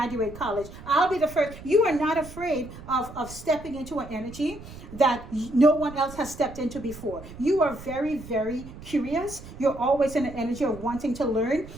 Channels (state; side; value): noise; right; rumble, 15 dB below the sound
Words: college, I'll be the first. You are not afraid of stepping into an energy that no one else has stepped into before. You are very, very curious. You're always in an energy of wanting to learn.